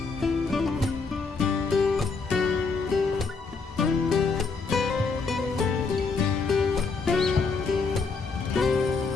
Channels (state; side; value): quieter; right; 4.6 dB